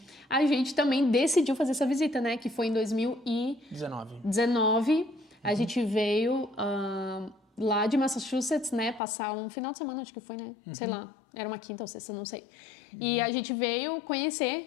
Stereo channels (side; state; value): right; drops out; at 9.0 s